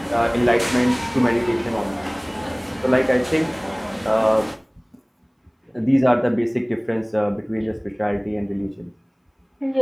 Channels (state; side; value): identical; both; correlation 1.00